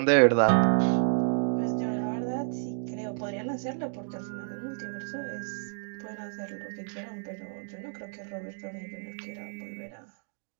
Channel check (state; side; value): silent; left; digital silence